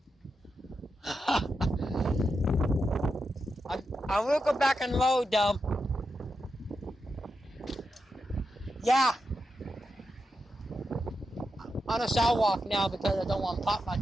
I will go back and load them. Yeah. On the sidewalk now because I don't want to pop my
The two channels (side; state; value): both; normal; correlation 0.87